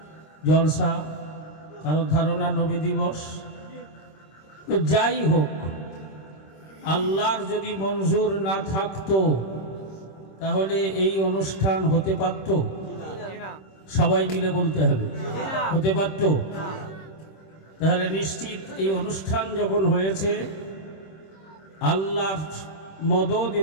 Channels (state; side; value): late; right; 26 ms